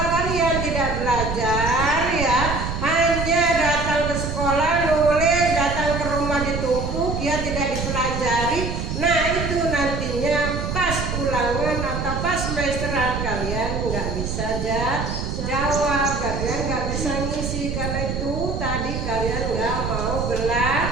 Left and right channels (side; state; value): right; noise; rumble, 3 dB below the sound